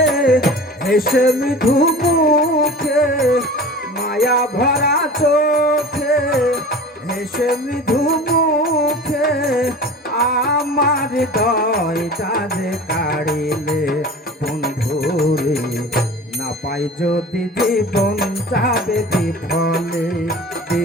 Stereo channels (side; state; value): both; normal; correlation 0.38